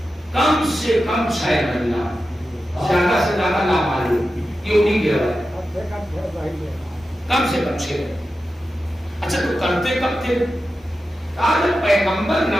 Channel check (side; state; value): both; normal; correlation 0.92